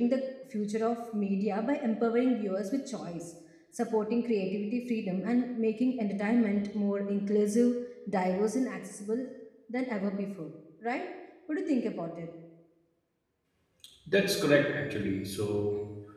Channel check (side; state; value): both; identical; correlation 1.00